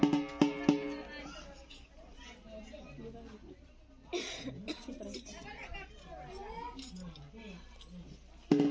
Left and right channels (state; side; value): identical; both; correlation 1.00